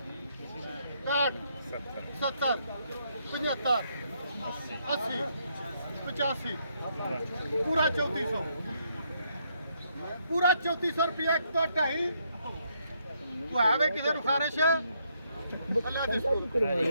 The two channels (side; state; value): both; inverted; correlation -0.74